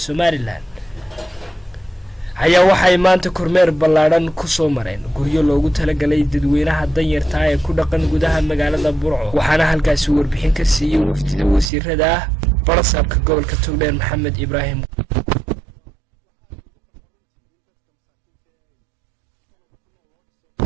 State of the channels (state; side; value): drops out; left; at 11.7 s